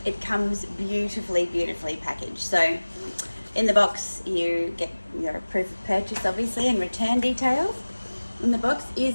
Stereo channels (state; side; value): inverted; both; correlation -1.00